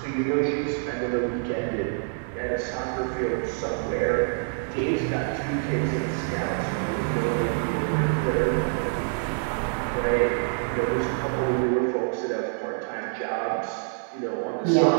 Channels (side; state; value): left; silent; 61 dB below the other